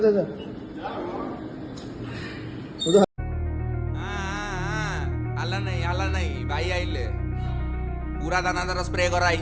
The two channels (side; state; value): both; identical; correlation 1.00